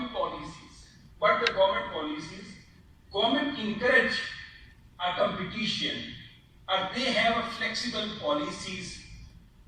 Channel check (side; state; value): both; identical; correlation 1.00